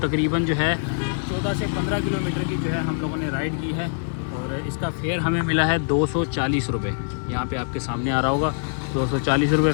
जो है 14 से 15 किलोमीटर की जो है हम लोगों ने राइड की है। और इसका फेयर हमें मिला है 240 रुपये। यहाँ पे आपके सामने आ रहा होगा 240 रुपये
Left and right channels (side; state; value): right; silent; 55 dB below the other